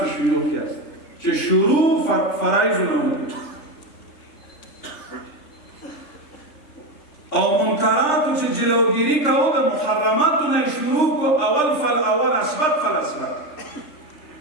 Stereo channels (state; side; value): late; right; 3.3 ms